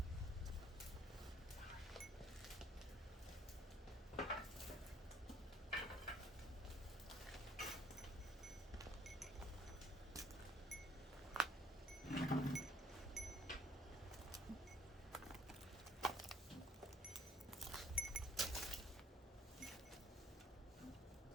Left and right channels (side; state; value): both; normal; correlation 0.62